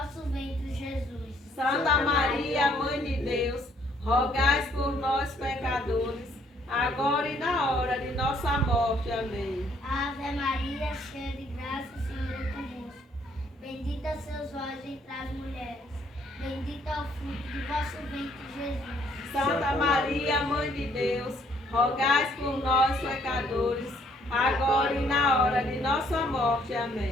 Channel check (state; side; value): normal; both; correlation 0.66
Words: ventre, Jesus. Santa Maria, Mãe de Deus, rogai por nós, pecadores, agora e na hora de nossa morte. Amém. Ave Maria, cheia de graça, o Senhor é convosco. Bendita sois vós entre as mulheres. Bendito é o fruto do vosso ventre, Jesus. Santa Maria, Mãe de Deus, rogai por nós, pecadores, agora e na hora de nossa morte.